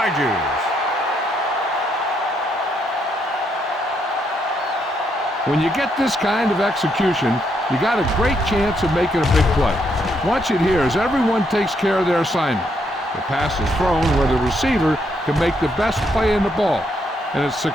When you get this kind of execution, you got a great chance of making a big play. Watch it here as everyone takes care of their assignment. The pass is thrown where the receiver can make the best play in the ball, and it's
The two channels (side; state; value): both; normal; correlation 0.75